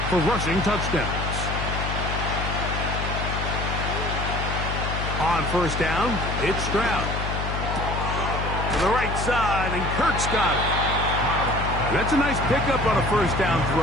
for rushing touchdowns. On first down, it's Stroud. To the right side, and Kirk's got it. That's a nice pickup on a first down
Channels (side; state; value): left; noise; hum, 3 dB below the sound